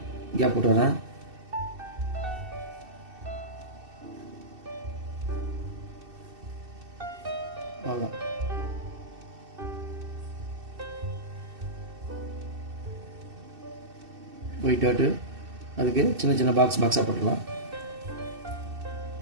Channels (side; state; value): left; late; 2.6 ms